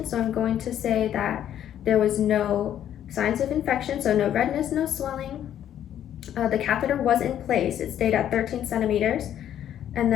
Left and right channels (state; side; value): quieter; right; 10.6 dB